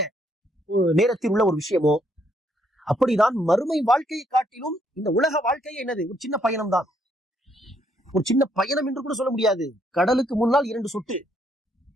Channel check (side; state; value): both; normal; correlation 0.71